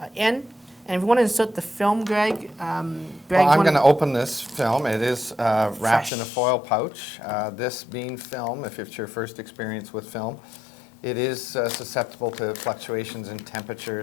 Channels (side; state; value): right; drops out; at 6.1 s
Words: in. And if you want to insert the film, Greg, well, I'm going to open this film. It is wrapped in a foil pouch. This being film, if it's your first experience with film, it is susceptible to fluctuations in